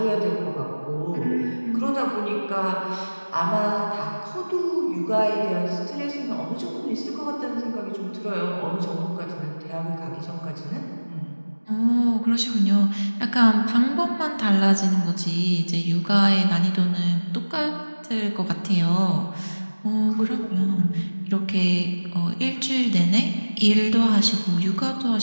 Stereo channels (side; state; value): both; inverted; correlation -1.00